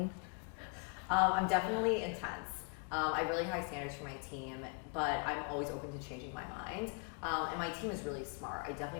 I'm definitely intense. I have really high standards for my team, but I'm always open to changing my mind. And my team is really smart. I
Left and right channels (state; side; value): quieter; right; 34.7 dB